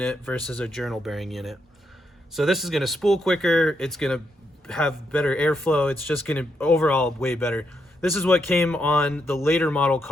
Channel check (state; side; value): normal; both; correlation 0.80